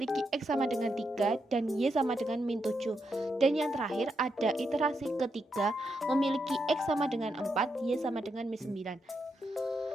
X sama dengan 3 dan Y sama dengan min 7. Dan yang terakhir ada iterasi ketiga memiliki X sama dengan 4, Y sama dengan min 9.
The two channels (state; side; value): normal; both; correlation 0.82